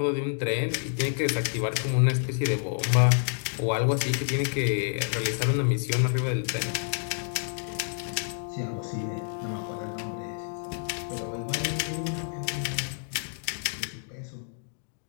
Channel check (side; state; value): right; silent; digital silence